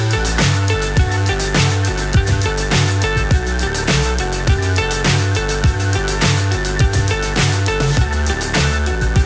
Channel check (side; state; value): both; identical; correlation 1.00